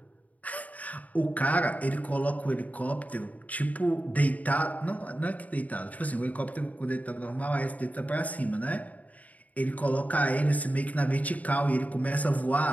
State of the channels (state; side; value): late; right; 0.073 ms